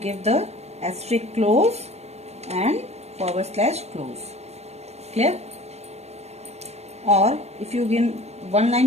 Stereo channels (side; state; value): left; late; 0.31 ms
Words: the asterisk close and / close. Clear? Or if you give